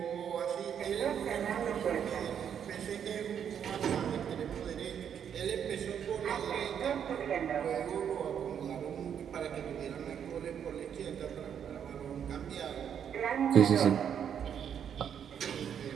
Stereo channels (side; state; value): left; quieter; 8.4 dB